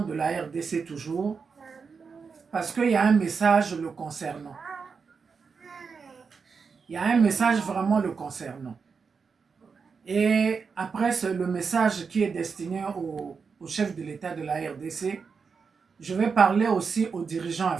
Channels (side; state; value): left; quieter; 5.4 dB